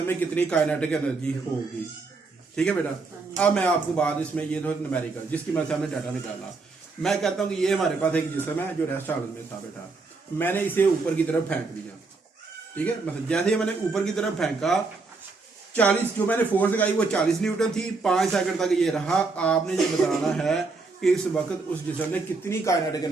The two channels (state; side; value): quieter; left; 4.0 dB